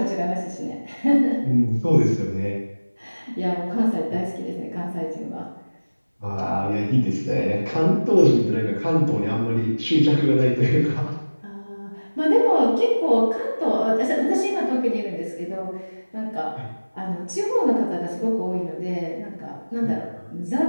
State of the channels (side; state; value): both; inverted; correlation -1.00